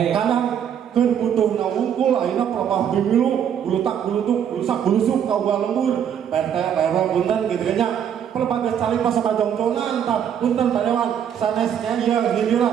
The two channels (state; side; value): quieter; left; 8.8 dB